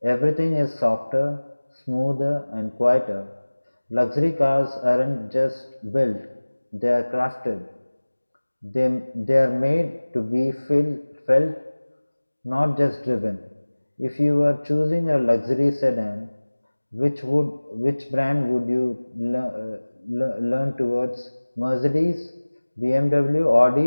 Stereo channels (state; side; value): inverted; both; correlation -1.00